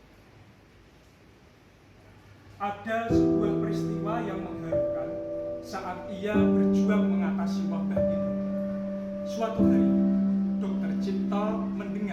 Ada sebuah peristiwa yang mengharukan saat ia berjuang mengatasi wabah itu. Suatu hari, Dr. Cipto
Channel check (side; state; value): both; identical; correlation 1.00